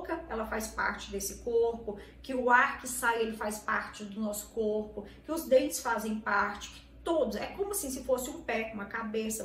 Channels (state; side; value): identical; both; correlation 1.00